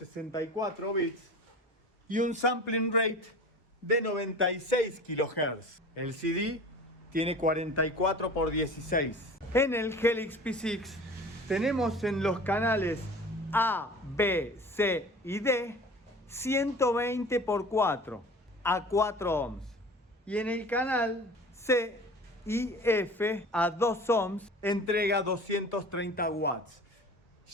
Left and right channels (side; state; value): both; normal; correlation 0.40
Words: bits y un sampling rate de 96 kHz. El CD tiene 44 por 16. En el Helix P6 tenemos en los canales A, B, C y D 120 por 4 a 4 ohms. Y en el canal C y F a 2 ohms entrega 230 watts.